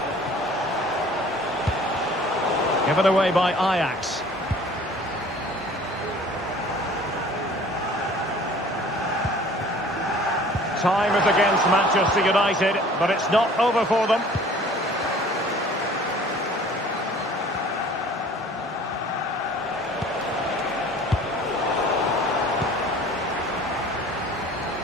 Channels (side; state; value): both; normal; correlation 0.49